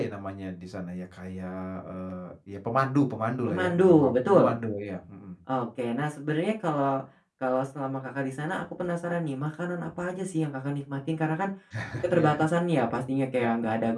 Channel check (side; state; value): both; identical; correlation 1.00